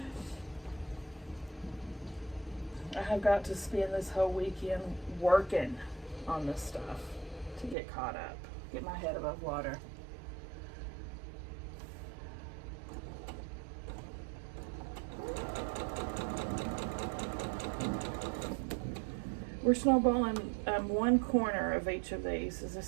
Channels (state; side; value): drops out; left; at 7.8 s